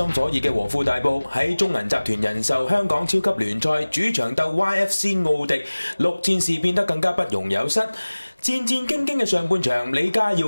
火熱嘅和富大埔喺中銀集團人壽香港超級聯賽主場鬥 YFC 奧迪，6戰事變得更加不容有失。戰戰兢兢嘅上半場，李家耀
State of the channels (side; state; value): both; inverted; correlation -1.00